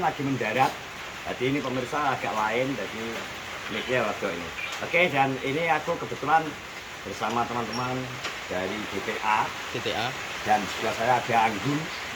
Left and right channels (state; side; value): identical; both; correlation 1.00